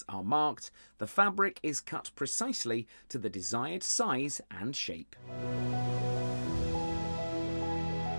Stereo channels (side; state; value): both; inverted; correlation -1.00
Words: are marked, the fabric is cut precisely to the desired size and shape.